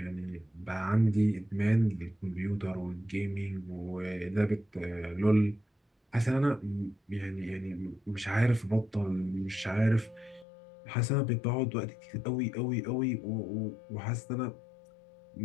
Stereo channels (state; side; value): drops out; right; at 10.5 s